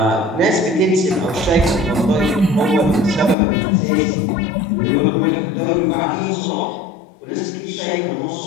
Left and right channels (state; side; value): drops out; right; at 3.4 s